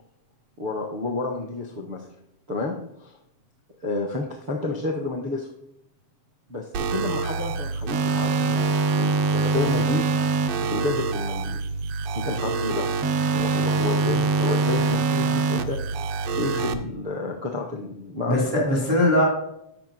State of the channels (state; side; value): late; left; 7.4 ms